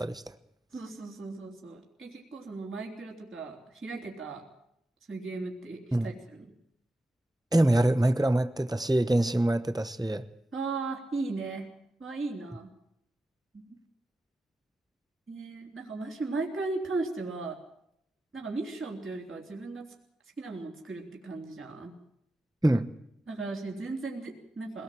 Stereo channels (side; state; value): both; normal; correlation 0.92